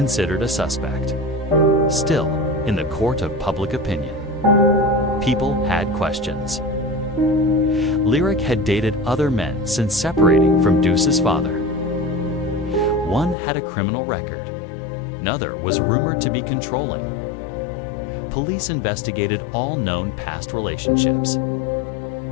a suspect. Still, in the court of public opinion, people had questions. Lyric had dated other men since separating from Deuce's father. One had a criminal record. Another was rumored to be controlling. Police investigated all known past relationships.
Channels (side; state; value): right; drops out; at 13.4 s